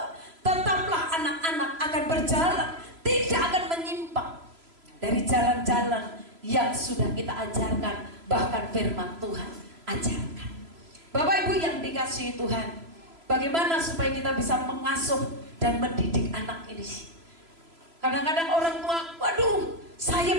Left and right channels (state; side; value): late; left; 3.0 ms